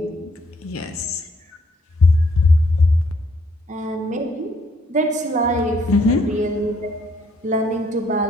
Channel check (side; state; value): both; normal; correlation 0.68